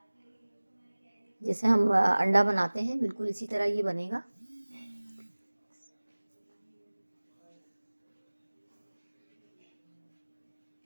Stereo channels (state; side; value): inverted; both; correlation -1.00